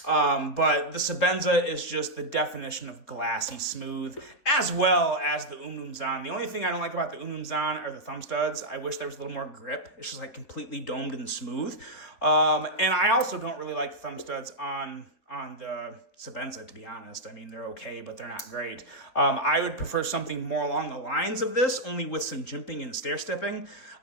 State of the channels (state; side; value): late; right; 4.0 ms